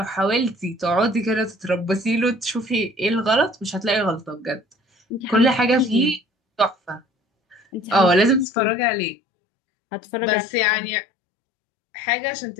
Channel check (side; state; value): right; drops out; at 8.5 s